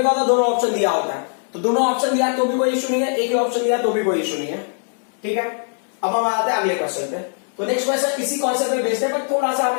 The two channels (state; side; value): silent; right; 65 dB below the other